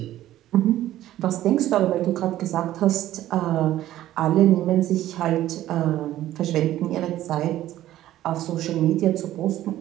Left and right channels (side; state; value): left; quieter; 13.8 dB